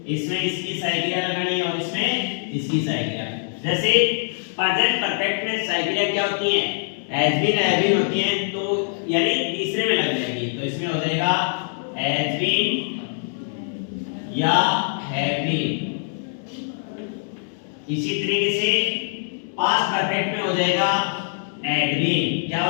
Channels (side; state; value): right; silent; digital silence